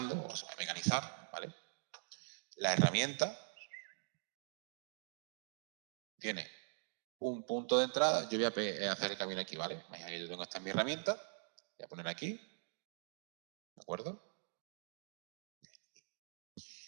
o se va a mecanizar, ¿vale? La herramienta tiene un punto de entrada. Yo voy a hacer el camino aquí, ¿vale? Yo tengo esta en mi herramienta. Voy a poner aquí. ¿De acuerdo?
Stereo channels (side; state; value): left; silent; digital silence